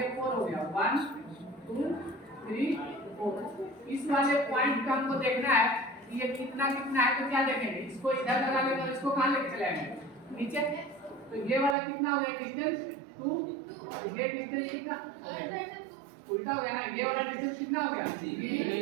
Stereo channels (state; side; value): drops out; left; at 11.8 s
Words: 4 हो गया। 1 2 3 4। इस वाले पॉइंट का हमको देखना है कि ये कितना कितना है, तो क्या देखेंगे? इसको इधर लगा लेंगे और इसको कहाँ लेके चलाएंगे? नीचे। तो ये वाला कितना हो गया डिस्टेंस? 2। ये डिस्टेंस कितना उल्टा हो गया ना, ये वाला डिस्टेंस कितना हो गया?